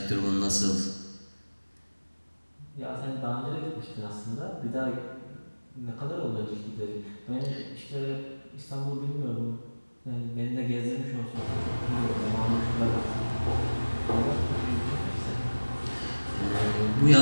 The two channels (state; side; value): inverted; both; correlation -1.00